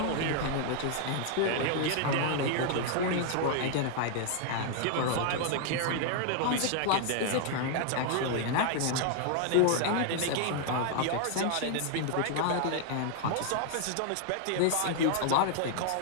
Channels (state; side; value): different; both; correlation 0.00